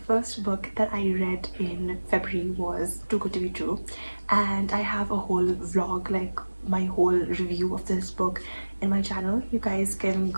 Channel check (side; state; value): both; inverted; correlation -1.00